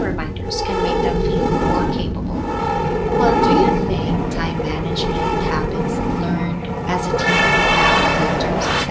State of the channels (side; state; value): both; identical; correlation 1.00